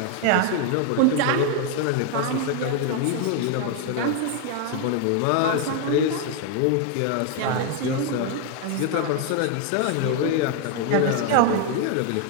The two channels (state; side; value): different; both; correlation 0.01